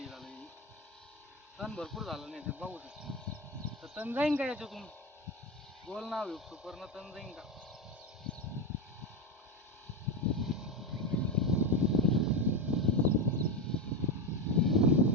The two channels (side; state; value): both; normal; correlation 0.15